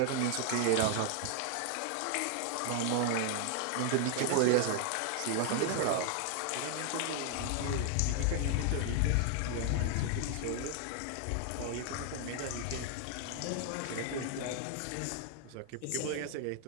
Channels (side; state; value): both; different; correlation 0.00